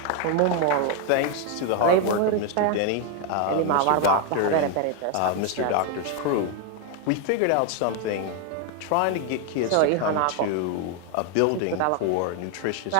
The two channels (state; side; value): different; both; correlation 0.01